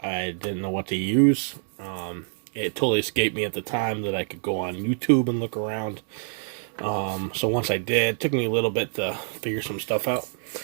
didn't know what to use. It totally escaped me at the time that I could go on YouTube and look around. So once I did, it took me a little bit to figure some stuff out.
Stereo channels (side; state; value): left; silent; digital silence